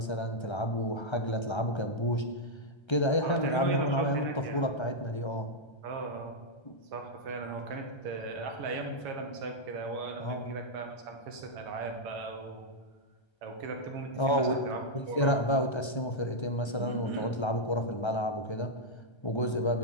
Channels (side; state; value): right; late; 1.3 ms